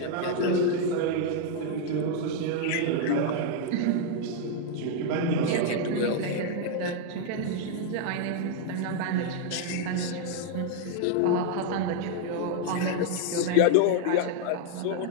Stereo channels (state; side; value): different; both; correlation 0.00